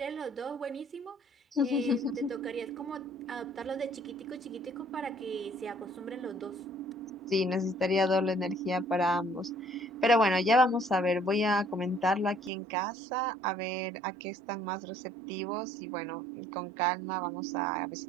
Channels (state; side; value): drops out; left; at 12.5 s